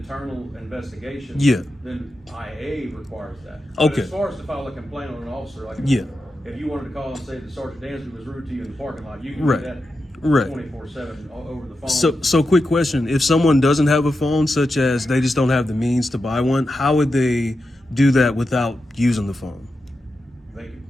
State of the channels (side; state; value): both; normal; correlation 0.89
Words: investigation, Yeah. then IA requires that. Okay. But as far as to file a complaint on an officer, like Yeah. if you wanted to call and say that Sergeant Dansby was rude to you in the parking lot, you can Right. do that Right. 24/7 over the phone. So quick question. If someone doesn't have a phone, such as they just don't have the means to buy one, how would they do that without using the phone? They could